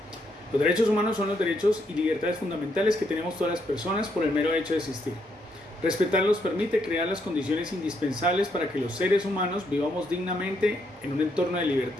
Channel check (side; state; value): both; normal; correlation 0.76